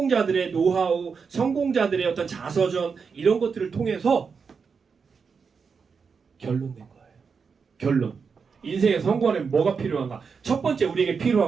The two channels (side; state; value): left; quieter; 5.6 dB